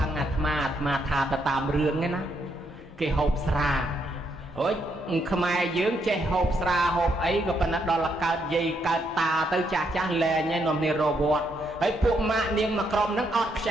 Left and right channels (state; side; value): normal; both; correlation 0.76